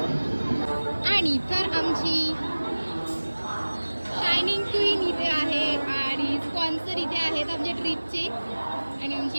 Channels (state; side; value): inverted; both; correlation -1.00